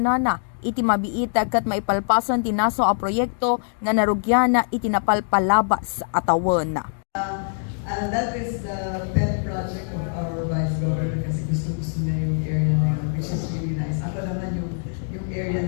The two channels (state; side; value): silent; right; digital silence